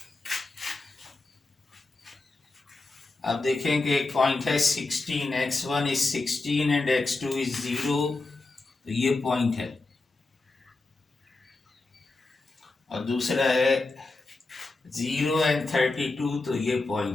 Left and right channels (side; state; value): right; quieter; 3.3 dB